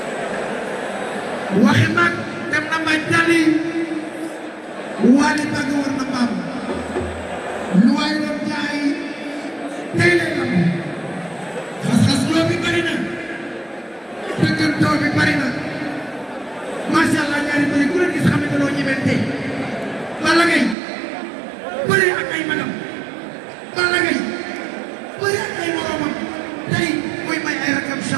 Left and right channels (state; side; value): drops out; left; at 20.8 s